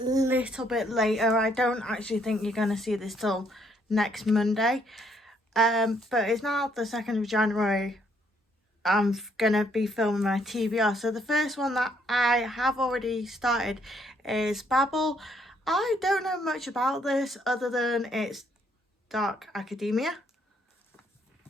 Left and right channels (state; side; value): normal; both; correlation 0.69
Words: little bit later. I don't actually think you're going to see this till next Monday, but it's now the 2nd of January. I'm going to be filming my TBR. So the first one that I have already started is Babel. I don't know much about this other than it's dark academia.